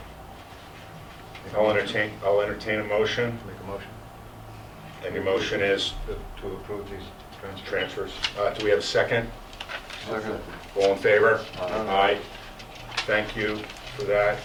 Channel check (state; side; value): identical; both; correlation 1.00